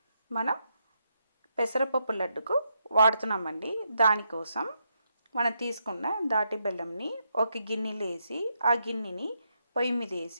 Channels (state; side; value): inverted; both; correlation -0.81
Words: మనం పెసరపప్పు లడ్డుకు వాడుతున్నామండి. దానికోసం మనం తీసుకున్న దాటి బెల్లంని ఒక గిన్నెలో వేసి ఆ గిన్నెని పొయ్యి మీద